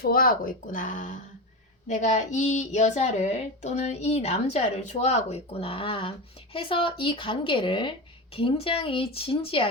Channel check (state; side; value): normal; both; correlation 0.21